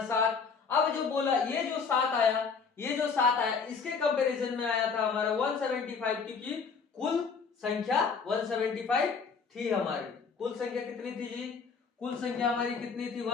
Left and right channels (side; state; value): right; quieter; 5.5 dB